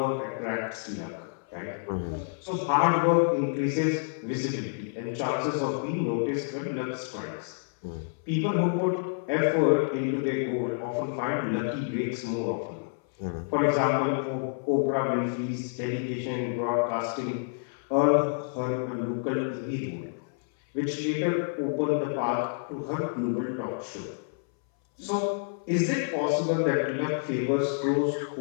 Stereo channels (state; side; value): silent; right; 59 dB below the other